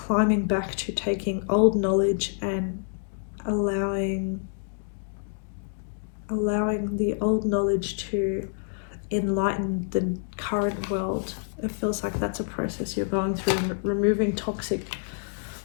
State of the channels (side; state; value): right; silent; digital silence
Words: back to taking old knowledge and allowing the old knowledge to enlighten the current world. It feels like that's a process you're going through, removing toxic